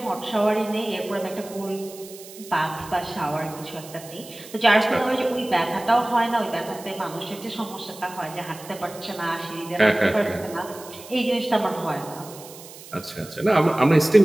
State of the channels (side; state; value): right; noise; hiss, 17 dB below the sound